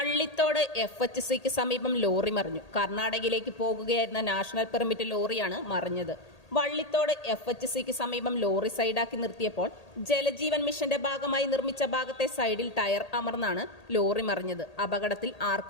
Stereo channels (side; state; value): right; late; 1.8 ms